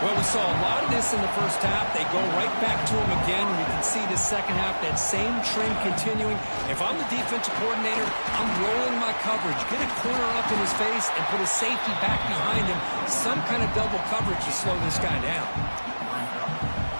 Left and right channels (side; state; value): both; inverted; correlation -1.00